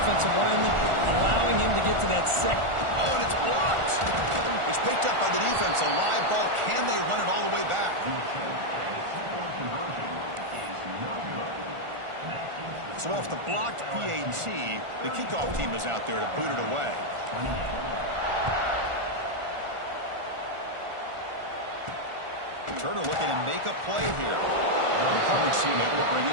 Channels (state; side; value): late; left; 1.4 ms